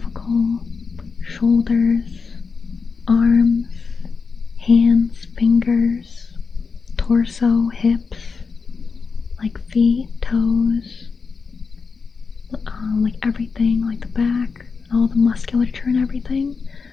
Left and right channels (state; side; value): quieter; right; 5.0 dB